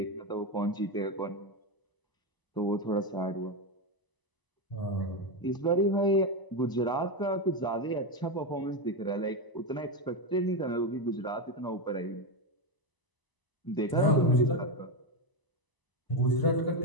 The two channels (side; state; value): right; late; 1.0 ms